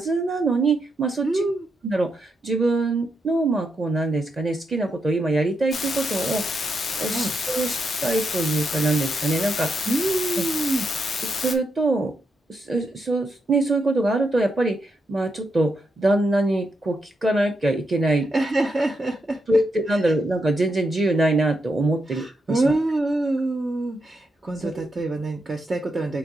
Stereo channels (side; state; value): both; normal; correlation 0.82